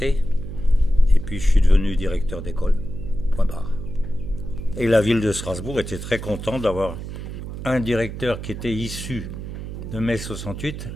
Et puis je suis devenu directeur d'école, point barre. Et la ville de Strasbourg était très contente d'avoir un directeur qui était issu de mai 68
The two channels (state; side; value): noise; right; hum, 8 dB below the sound